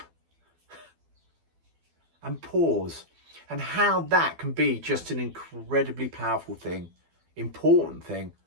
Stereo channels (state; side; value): late; left; 12 ms